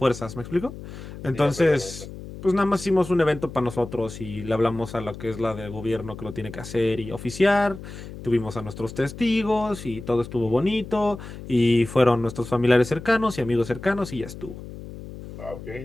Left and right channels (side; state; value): left; noise; hum, 12 dB below the sound